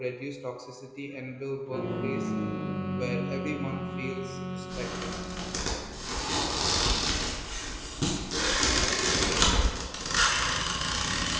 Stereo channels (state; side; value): identical; both; correlation 1.00